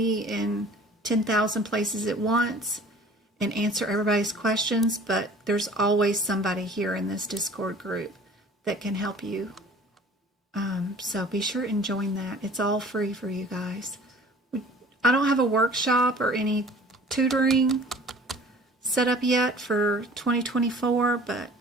in 10,000 places at once and answer everybody's questions, but there's always somebody here in this Discord group that can help you. So be sure and join that. It's all free for you guys. I don't have a workshop or any tutoring set up yet for 2024, but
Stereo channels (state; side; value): normal; both; correlation 0.47